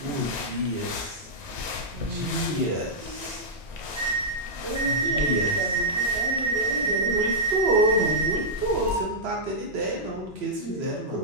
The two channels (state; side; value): normal; both; correlation -0.09